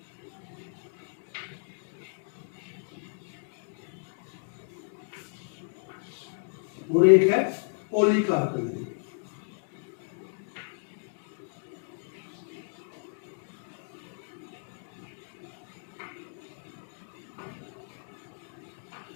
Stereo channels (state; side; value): silent; right; digital silence